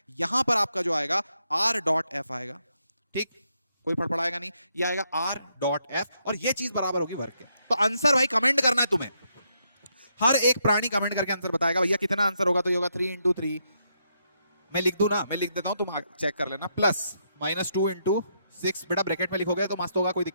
यहां पर आपका जो आएगा r डॉट f आएगा, ठीक, कोई फड़फड़ाएगा नहीं, ये आएगा r डॉट f, और ये चीज बराबर होगी वर्क के। तो आंसर भाई कमेंट करना है तुम्हें, हर एक प्राणी कमेंट करके आंसर बताएगा भैया कितना आंसर होगा, तो ये होगा 3 into 3। मैं लिख दूं ना, मैं लिख देता हूं, तुम चेक कर लेना, प्लस -2 into 6, बेटा ब्रैकेट में लिखोगे तो मस्त होगा, कोई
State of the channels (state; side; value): inverted; both; correlation -0.78